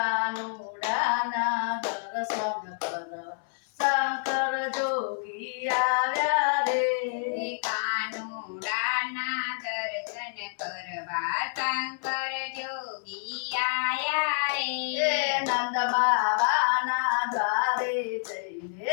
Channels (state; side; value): silent; right; 59 dB below the other